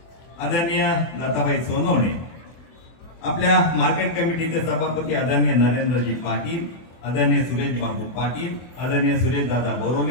आदरणीय लताबाई सोनवणे, आपल्या मार्केट कमिटीचे सभापती आदरणीय नरेंद्रजी पाटील, आदरणीय सुरेश बाबू पाटील, आदरणीय सुरेश दादा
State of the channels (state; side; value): late; right; 24 ms